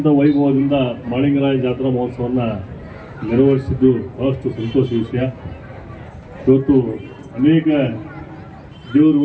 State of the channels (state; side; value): identical; both; correlation 1.00